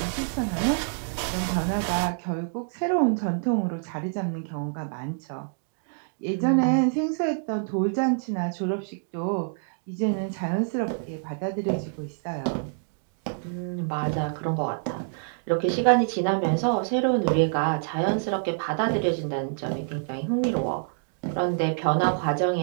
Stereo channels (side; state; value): left; silent; digital silence